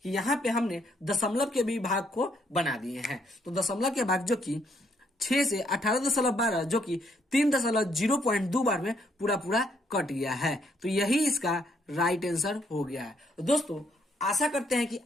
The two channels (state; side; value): normal; both; correlation 0.71